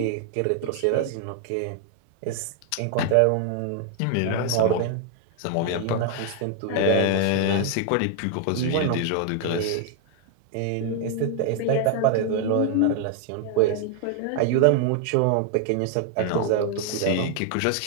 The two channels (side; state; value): both; different; correlation 0.00